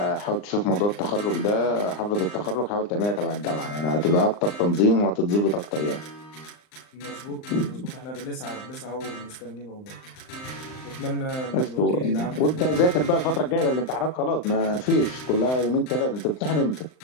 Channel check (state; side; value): late; right; 39 ms